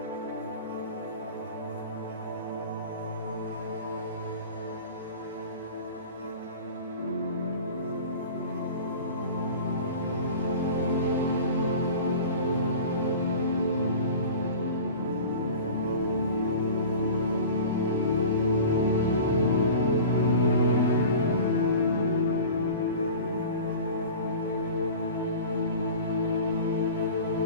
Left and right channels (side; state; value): both; inverted; correlation -0.38